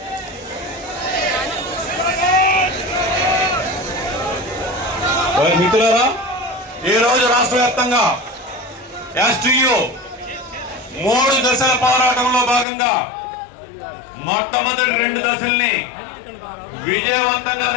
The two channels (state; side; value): drops out; right; at 12.7 s